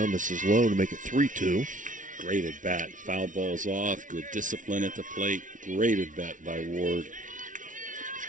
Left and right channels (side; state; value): left; late; 0.37 ms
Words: Misses low to make it 3-2. Great at bat. Foul balls off. Good discipline at the plate. Great at bat by Ward.